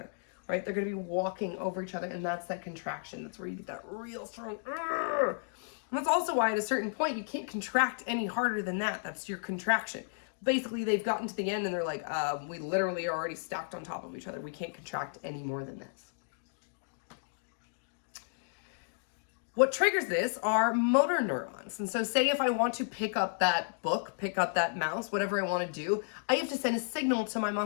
Right, they're going to be walking over each other, and that's that contraction. That's where you get that real strong. And that's also why at a certain point you can't contract any harder than that. That's your contraction. Basically, they've gotten to the end and they're like, we literally are already stacked on top of each other. We can't contract any more than this. What triggers this are motor neurons. And so say if I want to pick up that book, pick up that mouse, whatever I want to do, I have to send a signal to my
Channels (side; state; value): right; silent; digital silence